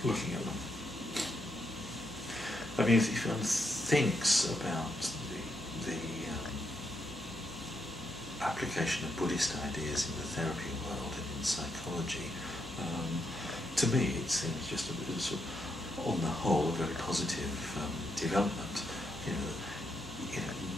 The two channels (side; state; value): right; noise; hum, 18 dB below the sound